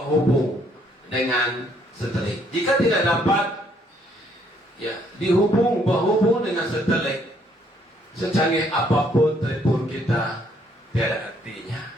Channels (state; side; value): normal; both; correlation 0.67